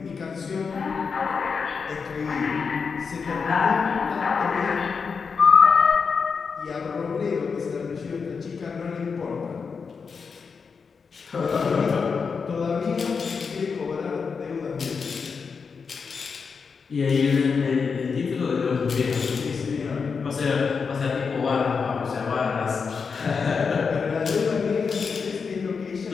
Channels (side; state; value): right; quieter; 5.5 dB